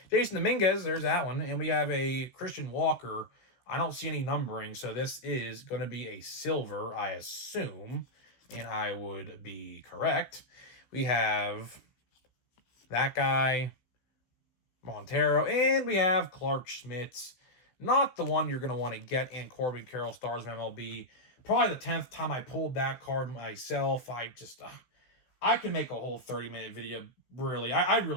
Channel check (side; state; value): right; late; 16 ms